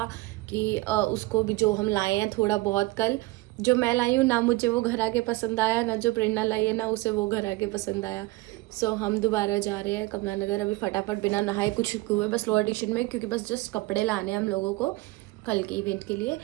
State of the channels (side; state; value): left; quieter; 20.8 dB